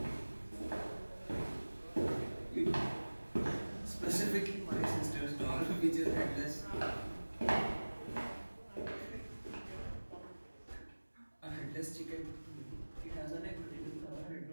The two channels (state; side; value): inverted; both; correlation -1.00